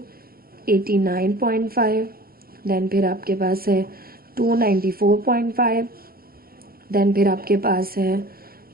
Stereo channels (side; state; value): left; late; 0.44 ms